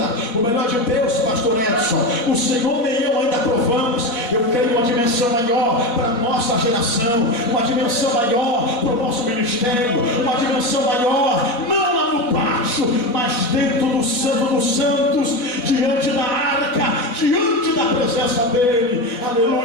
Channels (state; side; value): late; right; 4.1 ms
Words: O melhor de Deus, pastor Edson, o Senhor nem eu ainda provamos. Eu creio uma dimensão maior para a nossa geração, uma dimensão maior para o nosso ministério, uma dimensão maior, não lá no pátio, mas dentro do Santo dos Santos, diante da arca, diante da presença dele.